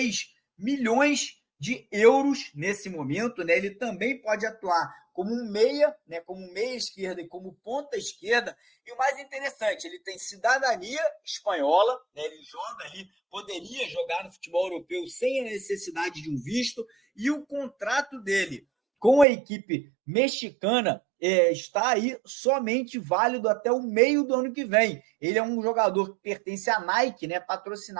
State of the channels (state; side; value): drops out; left; at 19.2 s